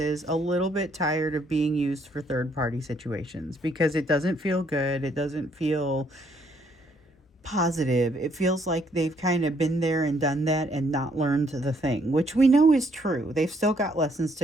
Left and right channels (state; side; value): normal; both; correlation 0.69